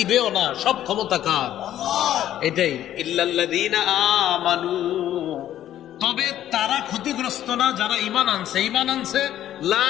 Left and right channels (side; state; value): right; quieter; 12.0 dB